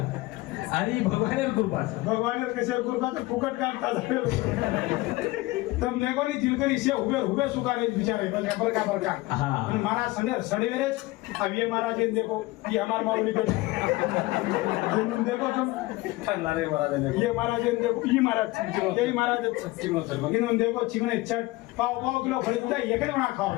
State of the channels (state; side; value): quieter; right; 20.2 dB